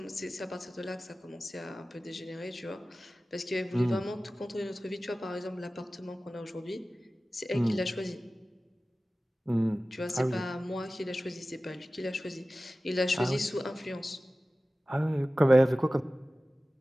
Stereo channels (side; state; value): both; normal; correlation 0.96